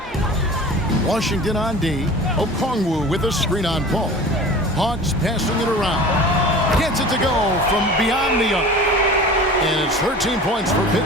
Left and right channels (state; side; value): normal; both; correlation 0.39